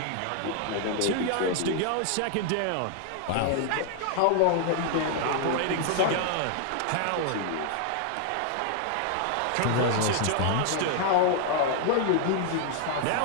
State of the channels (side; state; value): both; different; correlation 0.00